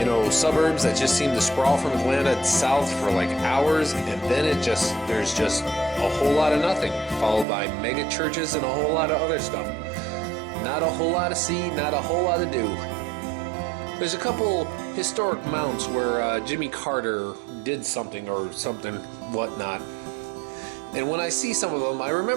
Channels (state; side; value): drops out; left; at 7.5 s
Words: suburbs that just seem to sprawl from Atlanta south for like hours, and then there's just a whole lot of nothing, followed by mega churches and a whole lot of other stuff. Not a whole lot to see, not a whole lot to do. There's a couple historic mounts where Jimmy Carter did something or something whatnot. And when I see some of them, I